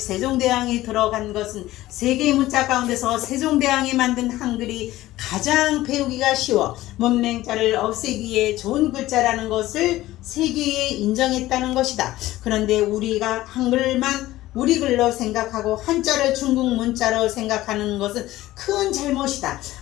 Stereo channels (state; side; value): quieter; right; 16.2 dB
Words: 들어간 것은 세계 문자 가운데서 세종대왕이 만든 한글이 가장 배우기가 쉬워 문맹자를 없애기에 좋은 글자라는 것을 세계에 인정했다는 것이다. 그런데 우리가 한글만 우리 글로 생각하고 한자를 중국 문자로 생각하는 것은 큰 잘못이다.